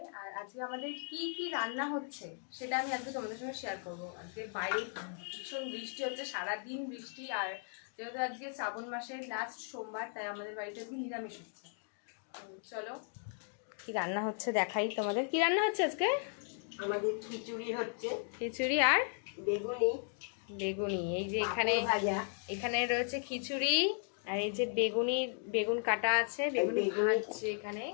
আর আজকে আমাদের কি কি রান্না হচ্ছে সেটা আমি আজকে তোমাদের সঙ্গে শেয়ার করবো। আজকে বাইরে ভীষণ বৃষ্টি হচ্ছে, সারাদিন বৃষ্টি। আর যেহেতু আজকে শ্রাবণ মাসের লাস্ট সোমবার, তাই আমাদের বাড়িতে আজকে নিরামিষ হচ্ছে। চলো কি রান্না হচ্ছে দেখাই তোমাদের। কি রান্না হচ্ছে আজকে? আমাদের খিচুড়ি হচ্ছে, খিচুড়ি আর বেগুনি বেগুনি। এই যে এখানে ভাজা, এখানে রয়েছে খিচুড়ি, আর এই যে বেগুন কাটা আছে, বেগুনি ভাজছে এখানে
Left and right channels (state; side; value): silent; right; 54 dB below the other